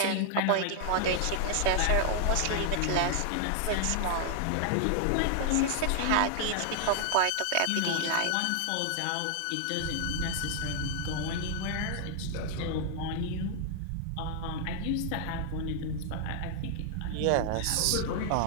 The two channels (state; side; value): different; both; correlation 0.00